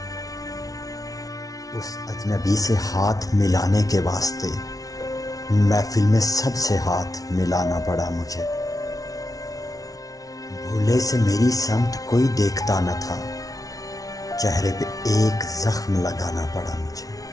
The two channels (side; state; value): right; late; 0.18 ms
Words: اس اجنبی سے ہاتھ ملانے کے واسطے محفل میں سب سے ہاتھ ملانا پڑا مجھے، بھولے سے میری سمت کوئی دیکھتا نہ تھا، چہرے پہ ایک زخم لگانا پڑا مجھے،